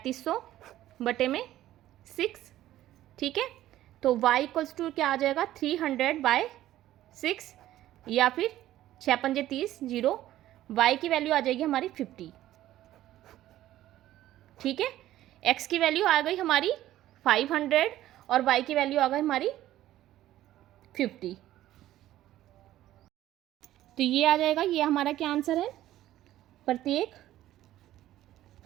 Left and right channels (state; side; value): quieter; left; 13.9 dB